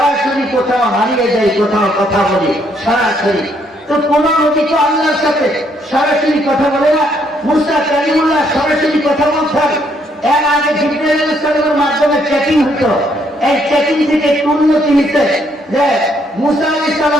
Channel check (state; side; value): normal; both; correlation 0.71